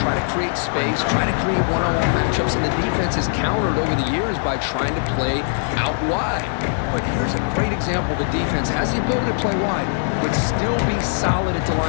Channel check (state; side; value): silent; right; digital silence